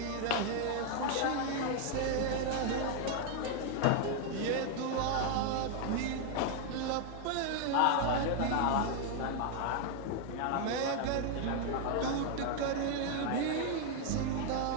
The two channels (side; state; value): both; different; correlation 0.00